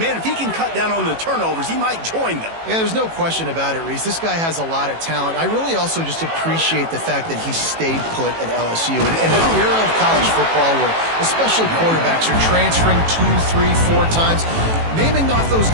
if he can cut down on the turnovers, he might join them. Yeah, there's no question about it, Reese. This guy has a lot of talent. I really also just appreciate the fact that he stayed put at LSU. In an era of college football where especially quarterbacks are transferring 2, 3, 4 times, naming off those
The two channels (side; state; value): left; late; 18 ms